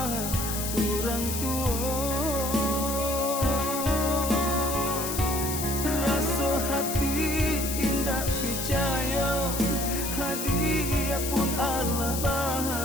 orang tua, rasa hati indah percaya hadiah pun Allah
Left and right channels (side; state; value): left; noise; hiss, 4 dB below the sound